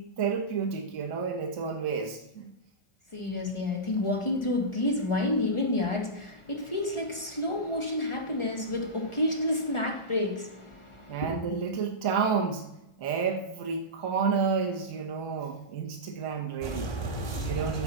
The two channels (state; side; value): late; right; 1.4 ms